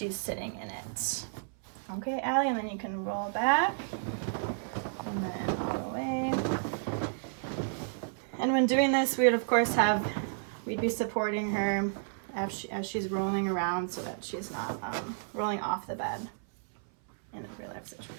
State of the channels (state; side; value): silent; left; 57 dB below the other